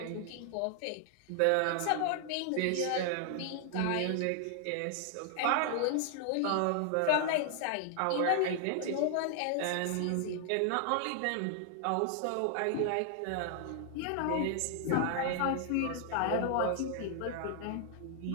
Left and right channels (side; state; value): both; different; correlation 0.00